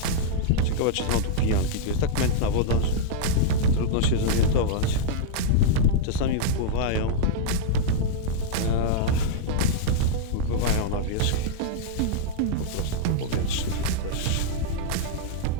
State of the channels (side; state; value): both; different; correlation -0.02